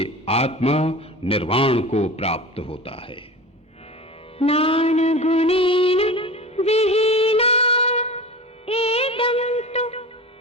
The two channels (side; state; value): both; normal; correlation 0.33